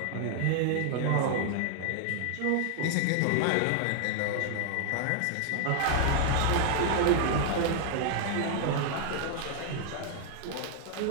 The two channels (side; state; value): both; different; correlation 0.00